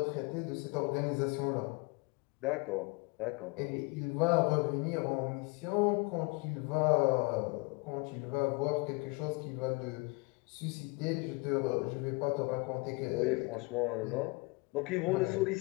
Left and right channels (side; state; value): right; quieter; 28.1 dB